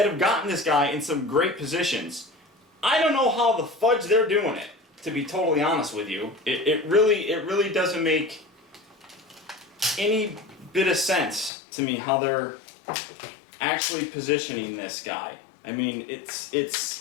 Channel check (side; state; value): right; drops out; at 11.5 s